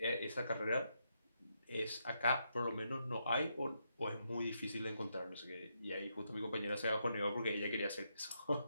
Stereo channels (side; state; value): both; inverted; correlation -0.80